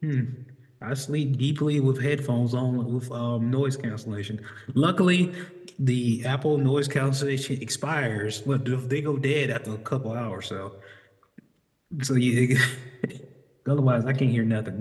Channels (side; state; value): both; identical; correlation 1.00